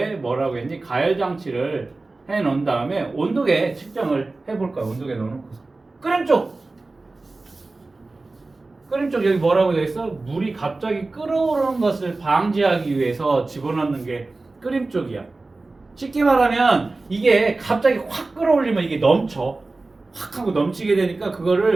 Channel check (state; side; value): quieter; left; 3.3 dB